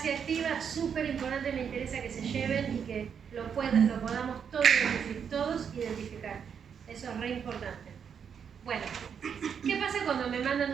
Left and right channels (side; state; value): left; quieter; 7.3 dB